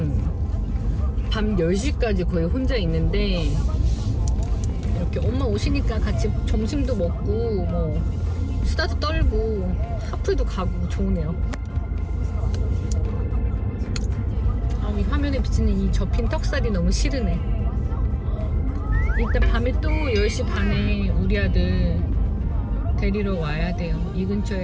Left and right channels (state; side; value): identical; both; correlation 1.00